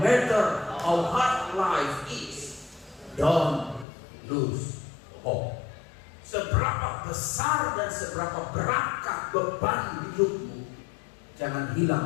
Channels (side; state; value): right; drops out; at 3.9 s